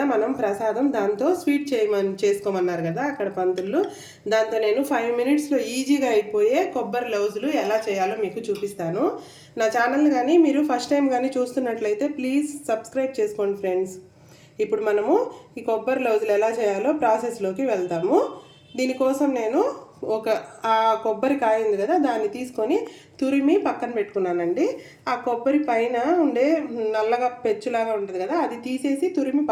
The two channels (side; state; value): both; identical; correlation 1.00